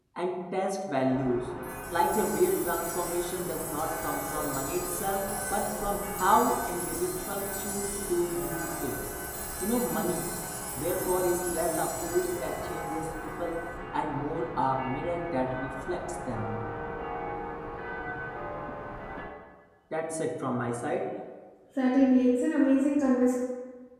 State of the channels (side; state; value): both; identical; correlation 1.00